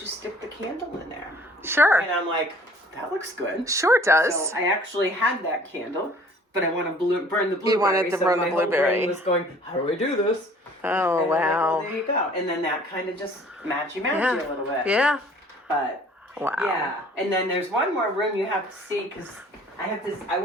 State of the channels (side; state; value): both; normal; correlation 0.53